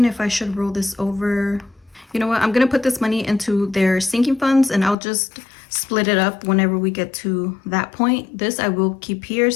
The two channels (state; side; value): drops out; right; at 5.0 s